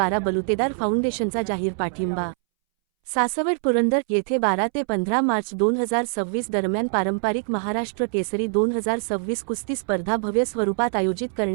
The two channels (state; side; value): silent; left; 63 dB below the other